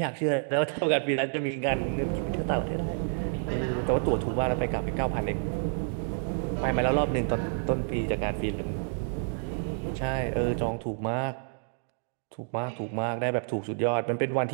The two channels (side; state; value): left; silent; digital silence